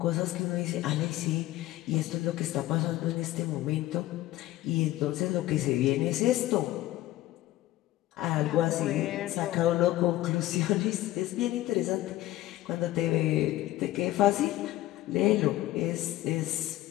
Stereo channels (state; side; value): quieter; right; 15.8 dB